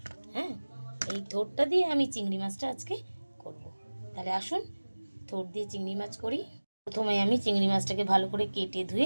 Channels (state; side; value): inverted; both; correlation -1.00